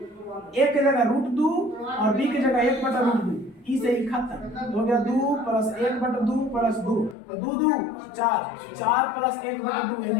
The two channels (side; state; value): right; drops out; at 7.2 s